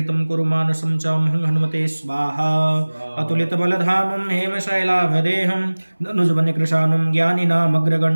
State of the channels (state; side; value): inverted; both; correlation -1.00